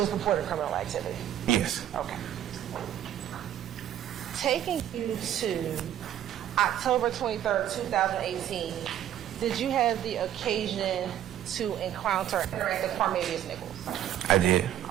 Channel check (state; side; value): quieter; left; 11.2 dB